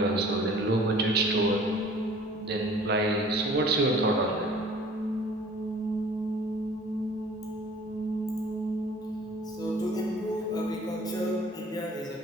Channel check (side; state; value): both; normal; correlation 0.50